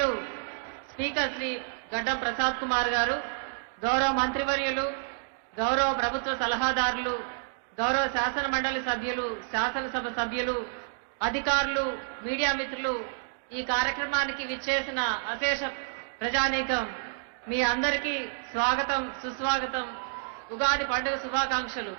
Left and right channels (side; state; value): left; silent; digital silence